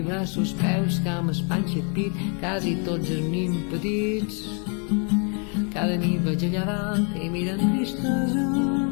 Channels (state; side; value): quieter; right; 38.8 dB